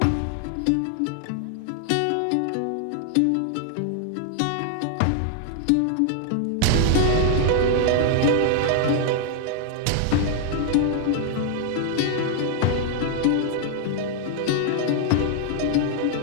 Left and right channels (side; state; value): both; different; correlation 0.00